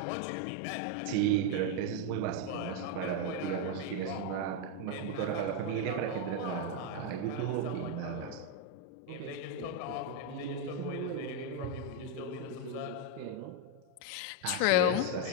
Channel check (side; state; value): both; different; correlation 0.01